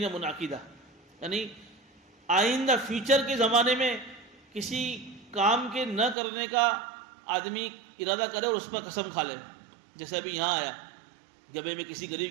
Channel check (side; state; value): left; drops out; at 6.2 s